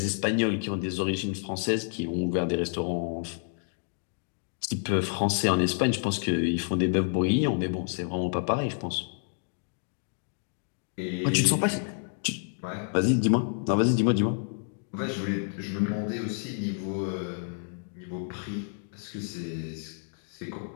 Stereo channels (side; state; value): right; silent; digital silence